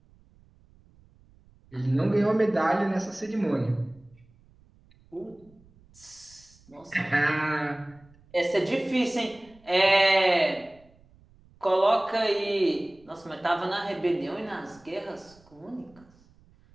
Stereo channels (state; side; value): noise; right; rumble, 29 dB below the sound